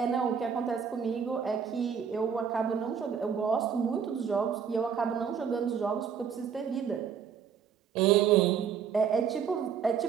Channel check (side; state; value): left; quieter; 7.2 dB